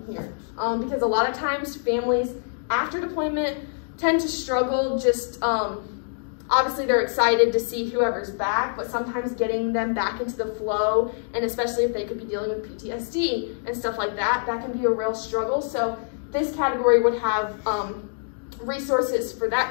here. Because a lot of times families after deployment tend to struggle just, obviously they're excited to see whoever's back, but sometimes getting them back into the flow, and especially if they could be dealing with PTSD and stuff like that, that can be a real struggle. So this category would have resources for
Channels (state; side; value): silent; right; digital silence